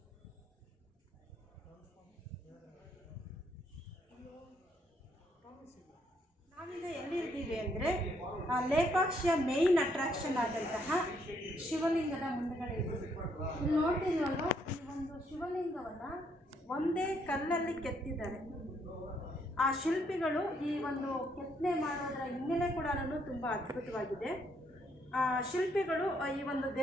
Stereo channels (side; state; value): both; normal; correlation 0.72